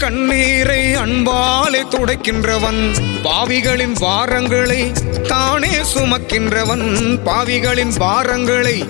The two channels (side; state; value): right; quieter; 28.8 dB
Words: கண்ணீரை அன்பாலே துடைக்கின்றவன். பாவிகளின் பாரங்களை தானே சுமக்கின்றவன், பாவிகளின் பாரங்களை